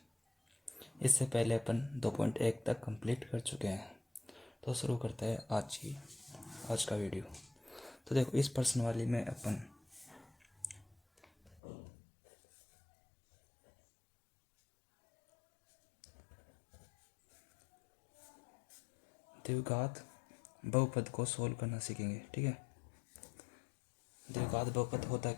इससे पहले अपन 2.1 तक कंप्लीट कर चुके हैं। तो शुरू करते हैं आज का वीडियो। तो देखो, इस प्रश्न वाली में अपन द्विघात बहुपद को सोल्व करना सीखेंगे। ठीक है, द्विघात बहुपद होता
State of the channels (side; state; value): right; drops out; at 11.6 s